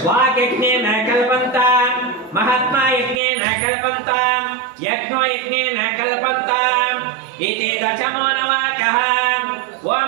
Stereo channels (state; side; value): drops out; left; at 3.2 s